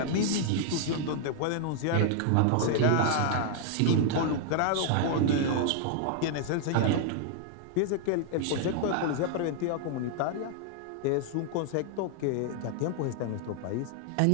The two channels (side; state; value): both; different; correlation -0.01